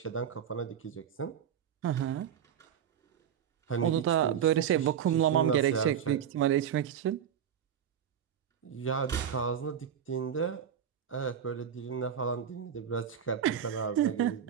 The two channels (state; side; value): quieter; left; 8.8 dB